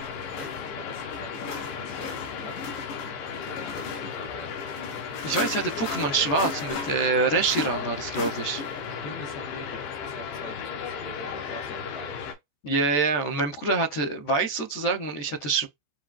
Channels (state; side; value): late; right; 14 ms